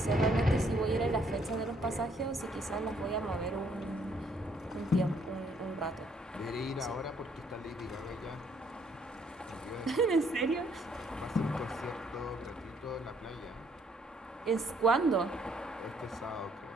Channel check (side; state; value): both; normal; correlation 0.67